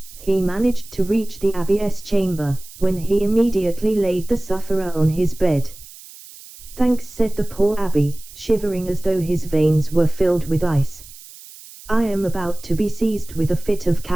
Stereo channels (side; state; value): right; noise; hiss, 19 dB below the sound